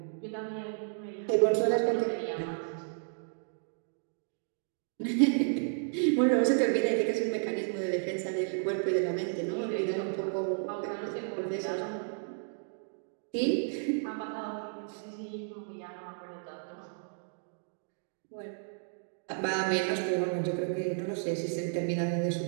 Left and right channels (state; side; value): silent; left; digital silence